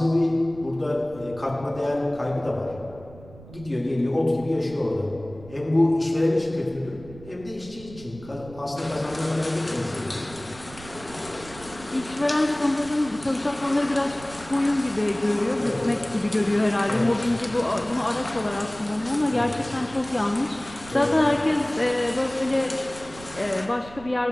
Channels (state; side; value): noise; right; rumble, 18 dB below the sound